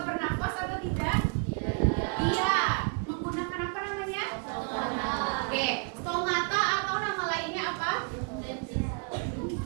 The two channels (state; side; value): quieter; left; 38.6 dB